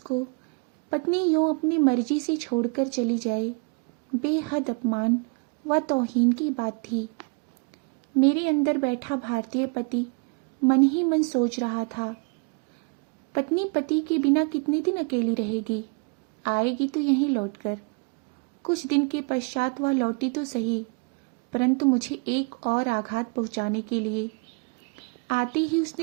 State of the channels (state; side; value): quieter; left; 34.3 dB